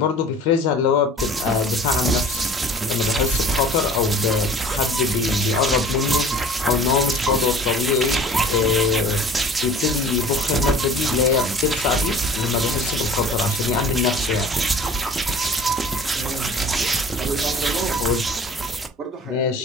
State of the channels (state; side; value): normal; both; correlation 0.45